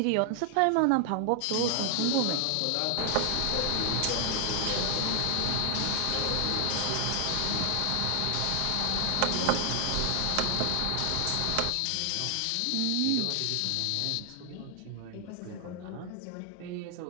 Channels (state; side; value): different; both; correlation 0.00